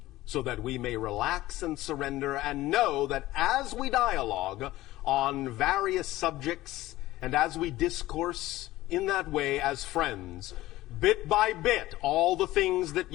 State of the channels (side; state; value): right; quieter; 16.7 dB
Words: so that we may relax and surrender and know that as we dialogue on various subjects and as we discourse in that way as friends, bit by bit, all the things that